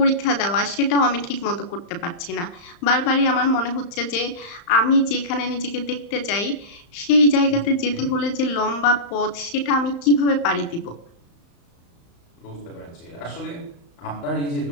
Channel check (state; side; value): late; right; 35 ms